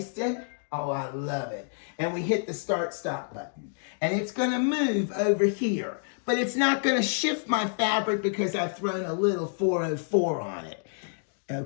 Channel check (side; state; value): right; silent; digital silence